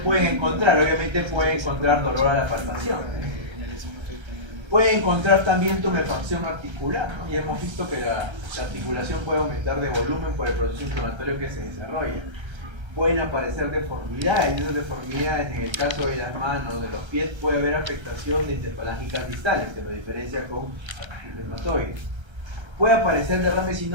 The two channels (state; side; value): late; left; 1.3 ms